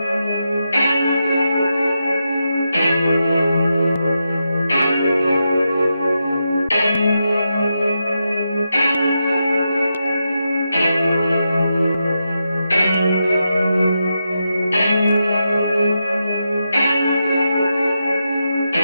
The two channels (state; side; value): inverted; both; correlation -0.86